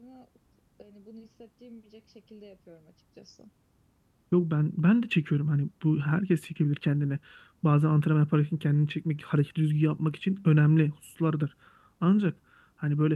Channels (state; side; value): identical; both; correlation 1.00